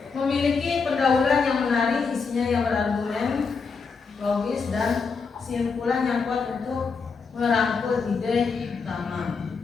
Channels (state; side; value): quieter; right; 5.1 dB